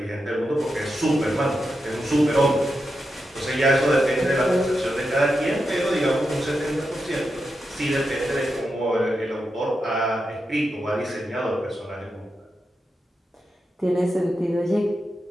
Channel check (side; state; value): both; normal; correlation 0.87